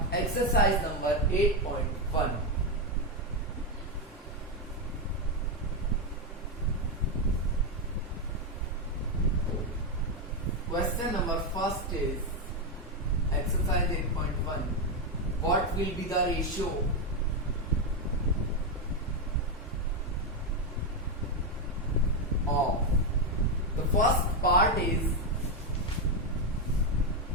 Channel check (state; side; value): normal; both; correlation 0.07